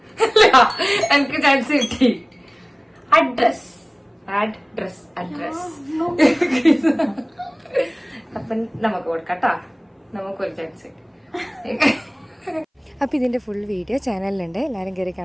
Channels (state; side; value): identical; both; correlation 1.00